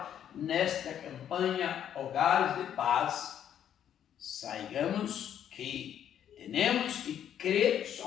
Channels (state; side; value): quieter; right; 9.8 dB